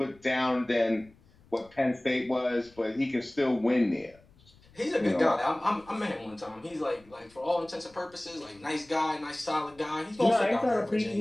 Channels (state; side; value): noise; left; rumble, 28 dB below the sound